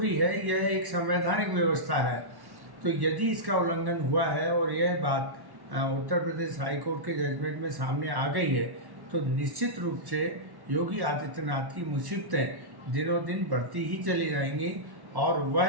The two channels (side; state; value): left; late; 1.1 ms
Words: है, यह एक संवैधानिक व्यवस्था है। तो यदि इसका उल्लंघन हुआ है और यह बात उत्तर प्रदेश हाईकोर्ट के जजमेंट में सामने आ गई है, तो निश्चित रूप से योगी आदित्यनाथ की मुसीबतें दिनों दिन बढ़ती ही चली जाएंगी और